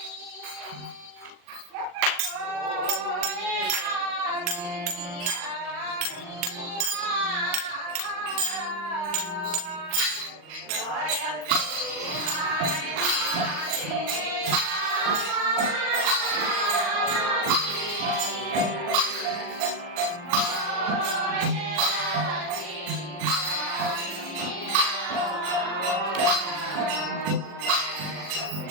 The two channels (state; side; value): late; left; 40 ms